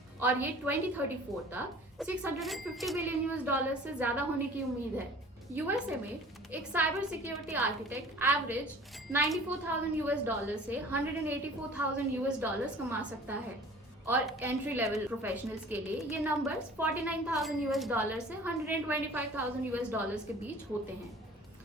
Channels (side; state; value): both; normal; correlation 0.47